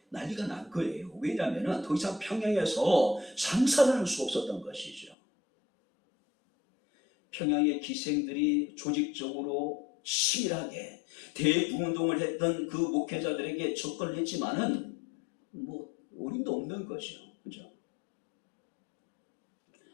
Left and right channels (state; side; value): drops out; right; at 5.2 s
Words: 난리가 난 거예요. 왜냐하면 더 이상 평양에서 장사를 할 수 없었던 것이죠. 평양의 기생들이 조직적으로 치밀하게 대부운동을 했던 그 목회자들에게 접근을 했지만은 어림도 없는 거죠. 그죠?